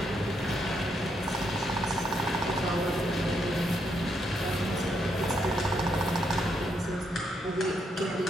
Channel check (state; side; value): normal; both; correlation 0.78